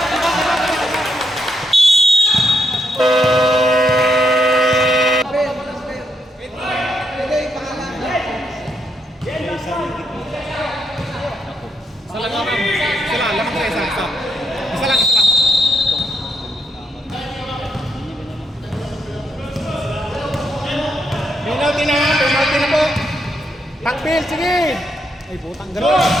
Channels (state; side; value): normal; both; correlation 0.78